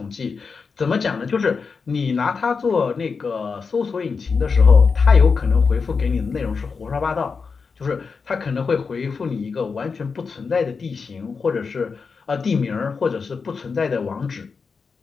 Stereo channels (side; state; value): right; quieter; 5.1 dB